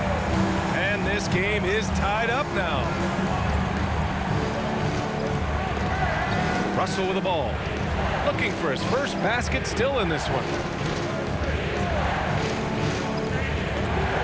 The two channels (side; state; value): both; identical; correlation 1.00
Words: And this game is tied up now. Russell with the ball. Looking for his first basket, still in this one.